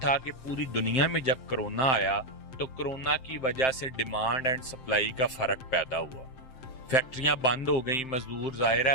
کہ پوری دنیا میں جب کرونا آیا تو کرونا کی وجہ سے ڈیمانڈ اینڈ سپلائی کا فرق پیدا ہوا. فیکٹریاں بند ہو گئیں, مزدور ظاہر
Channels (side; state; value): right; late; 7.7 ms